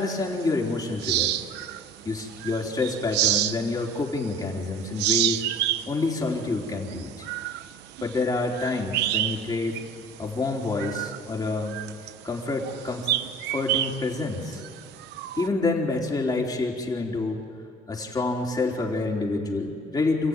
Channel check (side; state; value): both; normal; correlation 0.47